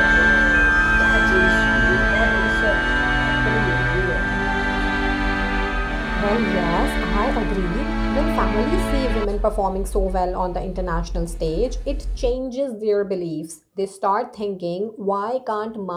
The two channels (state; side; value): identical; both; correlation 1.00